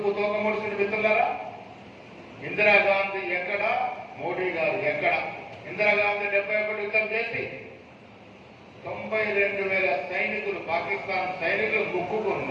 తోకముడిసిన మిత్రులారా? ఇందిరాగాంధీ ఎక్కడ, మోడీ గారు ఎక్కడ? ఇందిరాగాంధీ 71 యుద్ధం చేసి 92,000 సైనికులు, పాకిస్తాన్ సైనికులు ముక్కుకు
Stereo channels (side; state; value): both; identical; correlation 1.00